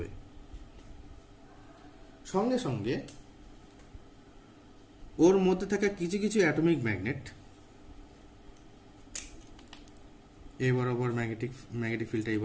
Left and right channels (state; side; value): identical; both; correlation 1.00